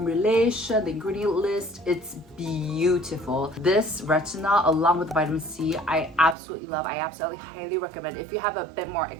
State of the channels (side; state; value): left; drops out; at 6.4 s